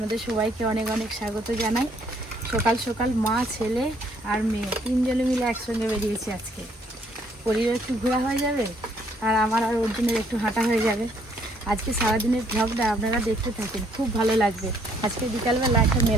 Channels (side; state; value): both; normal; correlation 0.66